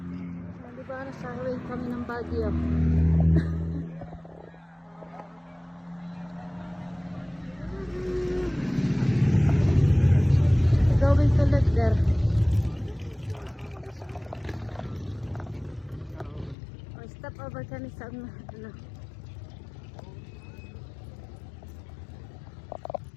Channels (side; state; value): right; drops out; at 16.6 s